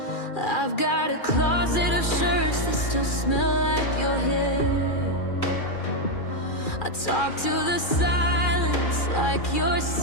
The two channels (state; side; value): late; right; 2.4 ms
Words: I've got a closet of shirts that still smell like your hair. I talk to the silence like you're